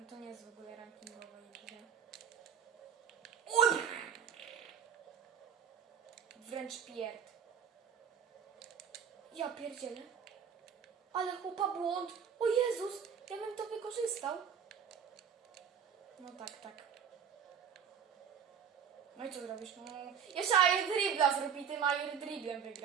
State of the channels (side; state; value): left; quieter; 7.6 dB